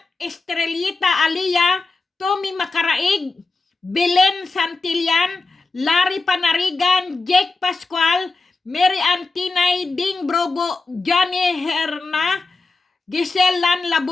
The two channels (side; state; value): right; quieter; 3.7 dB